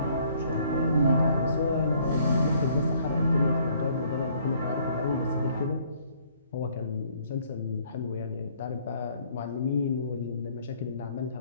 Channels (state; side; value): inverted; both; correlation -0.63